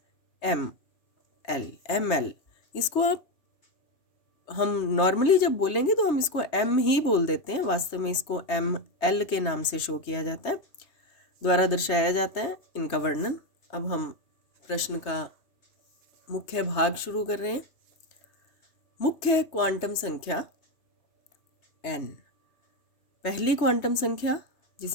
एम एल, इसको आप हम नॉर्मली जब बोलेंगे तो हम इसको एम ही बोल देते हैं, वास्तव में इसको एम, एल के नाम से शो किया जाता है, द्वारा दर्शाया जाता है इनका वर्णन। अब हम प्रश्न का मुख्य भाग शुरू कर रहे हैं। मुख्य क्वांटम संख्या एन। पहली क्वांटम संख्या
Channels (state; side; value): late; right; 3.3 ms